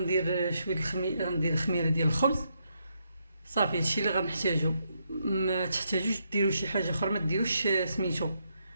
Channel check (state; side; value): inverted; both; correlation -0.78